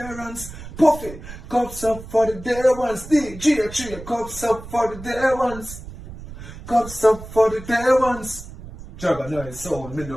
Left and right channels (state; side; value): noise; right; rumble, 13 dB below the sound